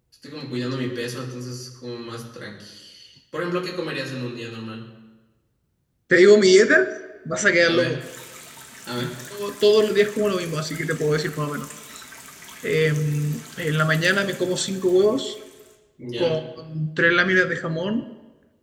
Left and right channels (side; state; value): both; identical; correlation 1.00